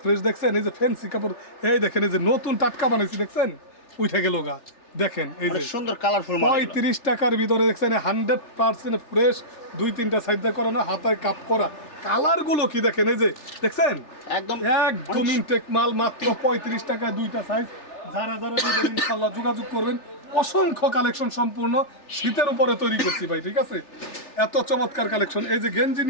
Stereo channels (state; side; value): late; right; 3.4 ms